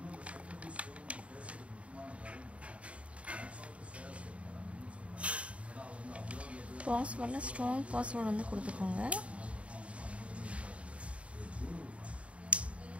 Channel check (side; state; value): left; late; 0.063 ms